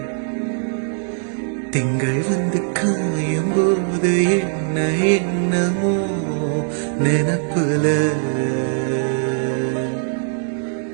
திங்கள் வந்து காயும் போது என்ன என்னமோ நினப்புல,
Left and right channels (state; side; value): silent; left; digital silence